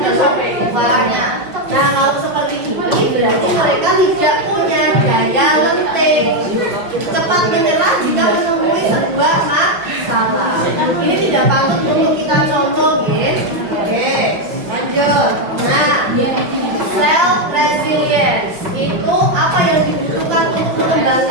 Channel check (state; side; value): late; left; 5.3 ms